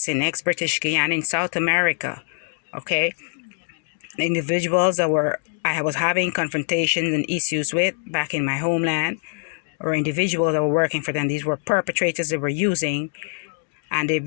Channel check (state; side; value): silent; right; 63 dB below the other